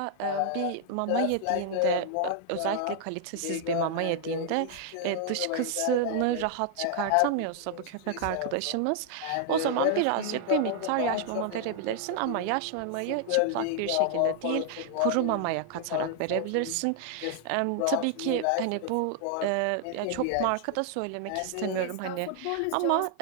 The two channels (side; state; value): both; different; correlation 0.00